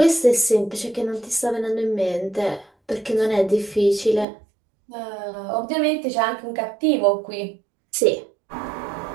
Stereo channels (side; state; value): left; drops out; at 4.2 s